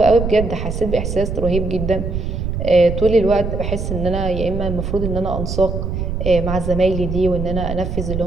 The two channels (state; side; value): noise; right; rumble, 3 dB below the sound